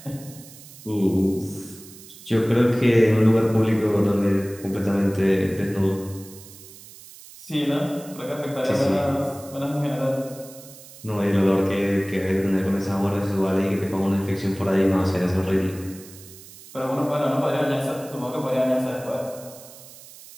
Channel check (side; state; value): right; noise; hiss, 19 dB below the sound